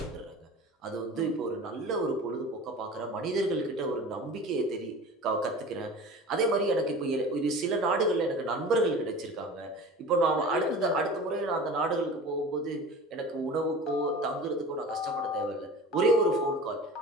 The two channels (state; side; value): normal; both; correlation 0.37